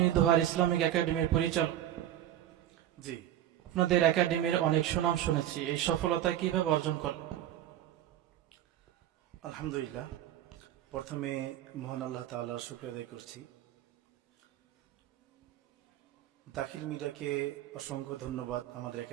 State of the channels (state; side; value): quieter; left; 11.9 dB